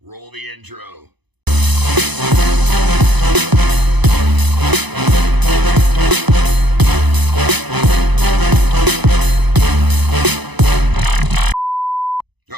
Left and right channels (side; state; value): left; late; 0.99 ms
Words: roll the intro.